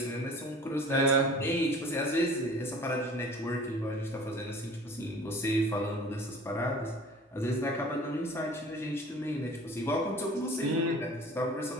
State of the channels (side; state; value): both; normal; correlation 0.45